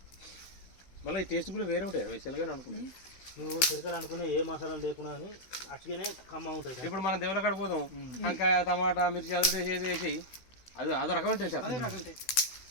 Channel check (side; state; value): right; late; 16 ms